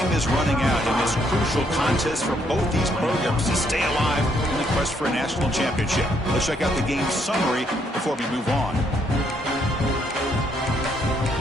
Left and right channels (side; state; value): both; normal; correlation 0.72